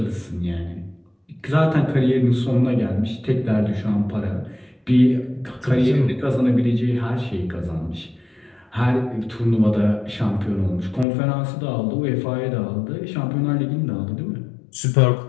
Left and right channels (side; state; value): right; drops out; at 11.1 s